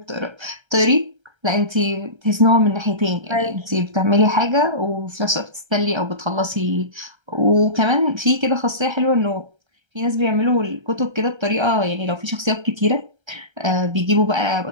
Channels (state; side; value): late; left; 1.3 ms